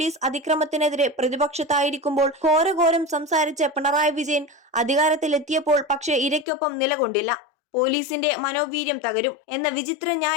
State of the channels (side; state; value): right; drops out; at 6.5 s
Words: അതിക്രമത്തിനെതിരെ പ്രതിപക്ഷത്തായിരിക്കുമ്പോൾ ഘോരഘോരം സംസാരിച്ച പിണറായി വിജയൻ അധികാരത്തിലെത്തിയപ്പോൾ പക്ഷേ ഇരയ്ക്കൊപ്പം നിലകൊണ്ടില്ല. പോലീസിന്റെ മനോവീര്യം തകരും എന്ന വിചിത്ര